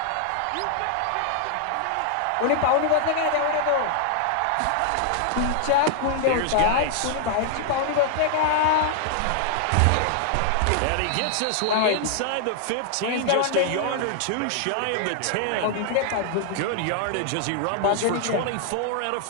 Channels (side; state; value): both; different; correlation -0.01